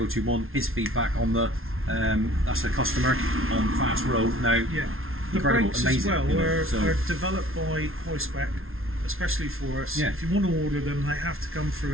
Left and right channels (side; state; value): left; late; 0.61 ms